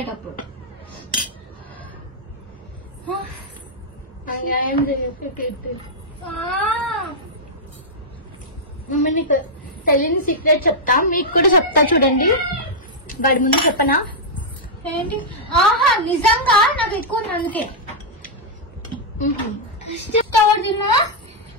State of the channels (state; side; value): normal; both; correlation -0.07